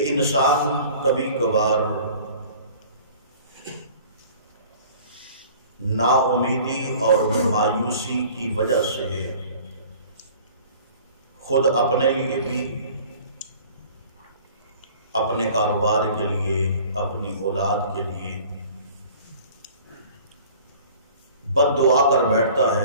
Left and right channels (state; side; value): inverted; both; correlation -0.48